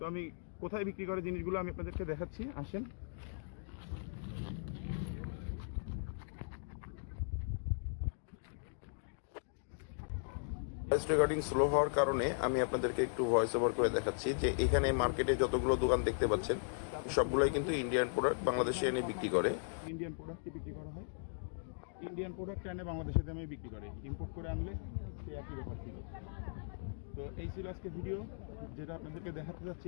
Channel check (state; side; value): silent; right; digital silence